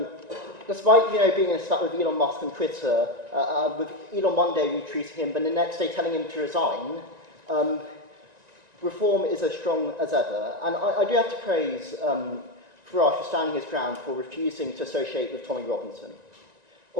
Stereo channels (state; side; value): late; left; 1.9 ms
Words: despite being in a spat with Elon Musk on Twitter, with Elon one day retweeting him, but the next day telling him to resign, Reform is as strong as ever. And I do have to praise Farage for standing his ground, for refusing to associate with Tommy Robinson